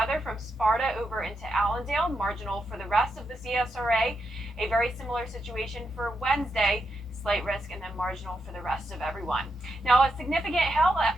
from Sparta over into Allendale, marginal for the rest of the CSRA. A very similar situation for Wednesday, slight risk and then marginal for the rest of everyone. Now, a significant hail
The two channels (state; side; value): normal; both; correlation 0.83